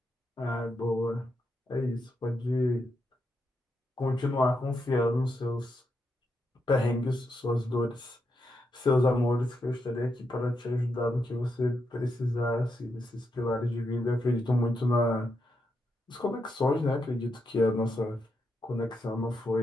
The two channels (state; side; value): normal; both; correlation 0.83